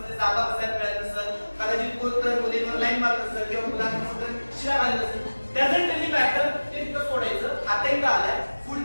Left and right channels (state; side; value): inverted; both; correlation -1.00